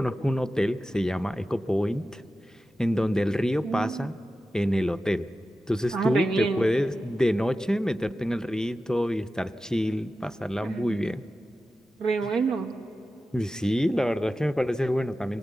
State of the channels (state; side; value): normal; both; correlation 0.93